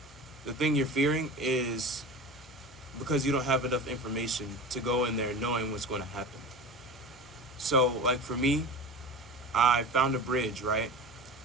the thing you're fearing is because you don't have enough information to go in there knowing what's going to happen. So, like for me, I found a bridge, right?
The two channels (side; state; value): both; normal; correlation 0.32